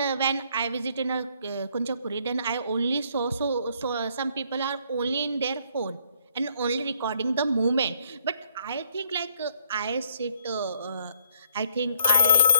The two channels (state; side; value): inverted; both; correlation -0.64